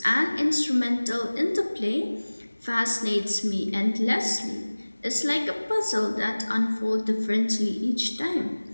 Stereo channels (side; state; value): both; inverted; correlation -1.00